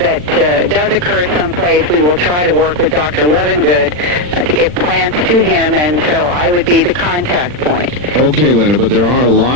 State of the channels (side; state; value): left; late; 40 ms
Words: does occur someplace. We will try to work with Dr. Levengood to get plants to him, and so I would be the contact point. Okay, Linda, but there are a lot